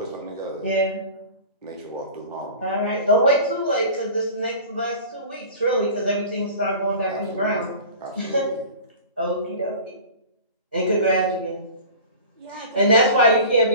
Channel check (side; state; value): both; inverted; correlation -0.39